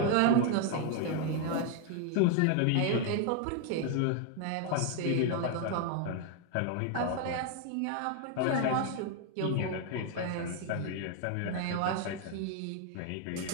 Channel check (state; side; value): different; both; correlation 0.00